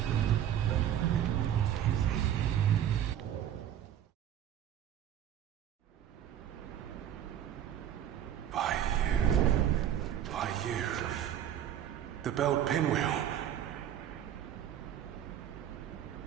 By you. The belt pinwheel.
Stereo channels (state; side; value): quieter; left; 10.4 dB